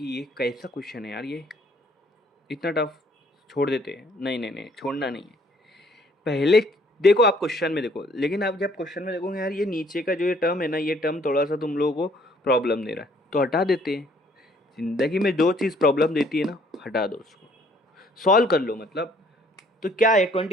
ये कैसा क्वेश्चन है यार, ये इतना टफ, छोड़ देते हैं। नहीं नहीं नहीं, छोड़ना नहीं है। पहले देखो, आप क्वेश्चन में देखो, लेकिन आप जब क्वेश्चन में देखोगे यार ये नीचे का जो ये टर्म है ना, ये टर्म थोड़ा सा तुम लोगों को प्रॉब्लम दे रहा है, तो हटा देते हैं। जिंदगी में जो चीज़ प्रॉब्लम देती है ना, हटा दो उसको, सॉल्व कर लो। मतलब तो क्या है,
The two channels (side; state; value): both; normal; correlation 0.62